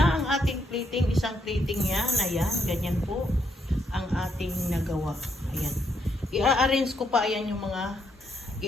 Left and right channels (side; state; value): both; normal; correlation 0.75